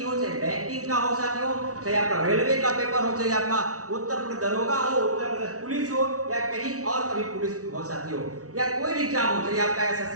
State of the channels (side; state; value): left; late; 0.66 ms